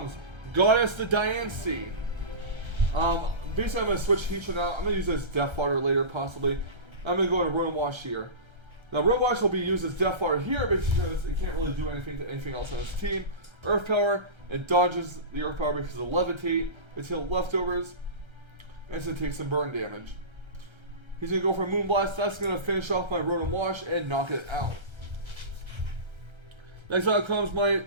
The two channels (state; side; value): late; left; 1.3 ms